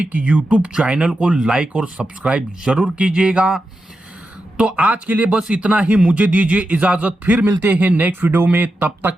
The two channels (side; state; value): both; normal; correlation 0.89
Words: यूट्यूब चैनल को लाइक और सब्सक्राइब जरूर कीजिएगा। तो आज के लिए बस इतना ही, मुझे दीजिए इजाजत। फिर मिलते हैं नेक्स्ट वीडियो में, तब